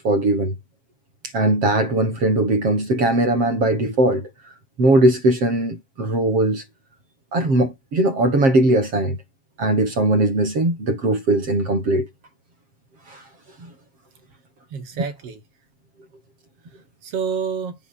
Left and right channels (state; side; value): late; left; 7.5 ms